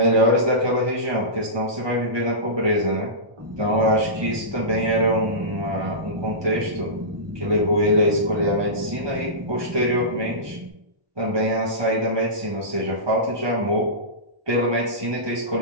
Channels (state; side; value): late; left; 1.2 ms